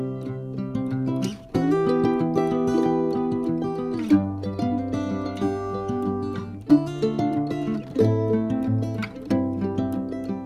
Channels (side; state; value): both; identical; correlation 1.00